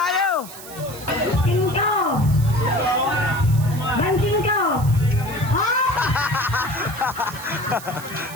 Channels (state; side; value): noise; right; hiss, 15 dB below the sound